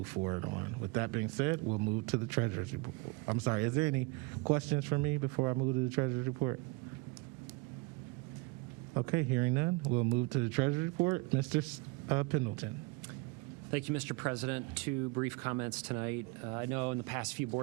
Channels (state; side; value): quieter; left; 24.5 dB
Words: forward on. With that being said, we'll move to the Treasurer's Report. I'm sorry, is there any questions for me before I move to the Treasurer's Report? Okay, hearing none, we'll move to the Treasury Report. Mr. Pendleton. Thank you, Mr. President. 2 brief comments tonight. I know in the past few